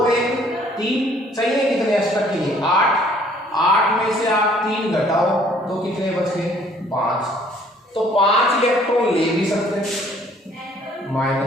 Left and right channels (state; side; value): normal; both; correlation 0.59